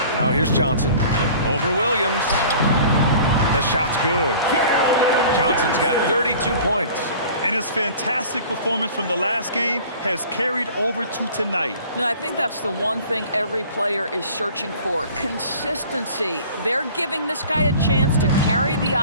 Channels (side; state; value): both; inverted; correlation -0.45